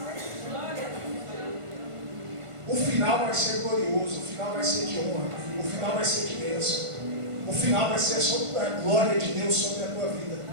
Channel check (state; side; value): late; left; 1.5 ms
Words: O final vai ser glorioso, o final vai ser de honra, o final vai ser de bênção, o final vai ser sobre a glória de Deus sobre a tua vida,